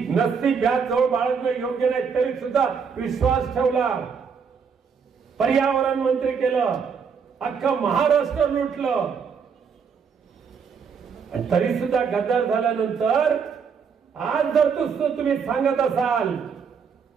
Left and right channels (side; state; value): left; quieter; 6.2 dB